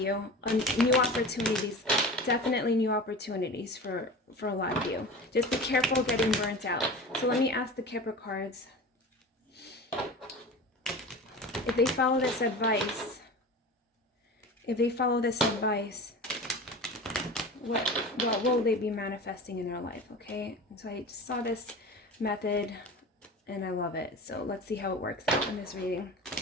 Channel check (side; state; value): both; normal; correlation 0.33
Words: New opportunities, definitely new opportunities for a lot of you. Just be careful getting burnt out. So let me ask the Kipper cards. If they follow this advice, what will they be manifesting in their life? Okay, and so I just saw this method and I love it. So let's see how it works out in this reading.